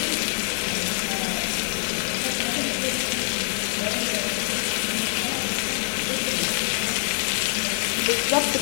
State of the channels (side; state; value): right; silent; digital silence